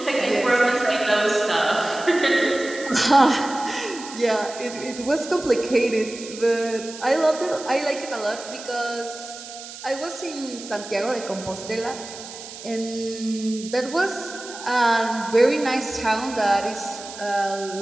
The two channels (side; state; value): right; noise; hiss, 13 dB below the sound